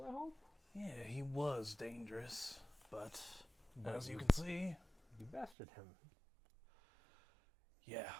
I hope? Yeah, he was dangerous, but as you you- can see, You bested him. yeah.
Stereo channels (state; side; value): drops out; left; at 5.6 s